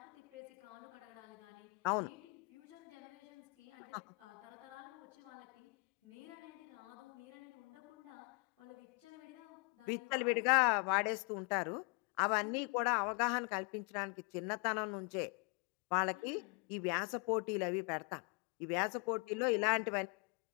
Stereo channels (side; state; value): right; quieter; 33.9 dB